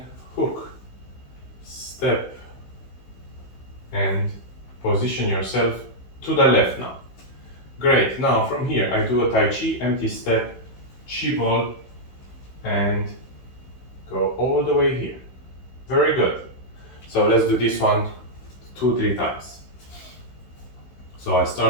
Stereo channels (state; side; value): late; right; 16 ms